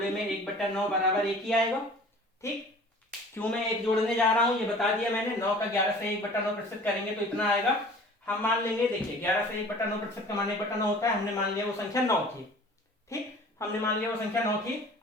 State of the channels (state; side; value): normal; both; correlation 0.46